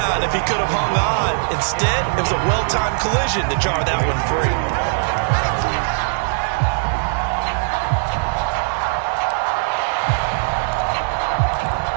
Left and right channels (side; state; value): left; silent; 66 dB below the other